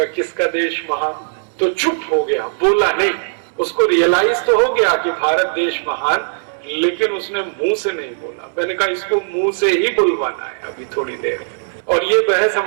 किसका देश महान। तो चुप हो गया, बोला नहीं। उसको रियलाइज तो हो गया कि भारत देश महान, लेकिन उसने मुंह से नहीं बोला। मैंने कहा इसको मुंह से ही बुलवाना है अभी थोड़ी देर। और ये बहस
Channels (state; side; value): silent; left; digital silence